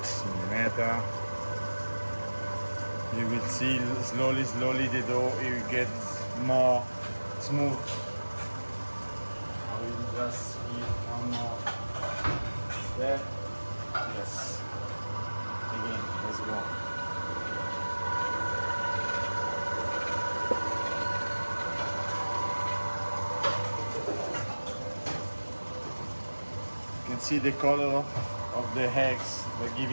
mm. You will see slowly the dough will get more smooth. I will just give one more step. Yes. Again, let's go. You can see the color of the eggs. They're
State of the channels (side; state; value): both; inverted; correlation -1.00